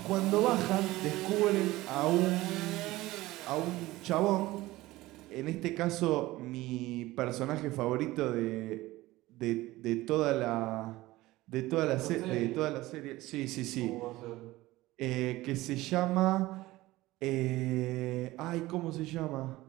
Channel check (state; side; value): quieter; left; 18.2 dB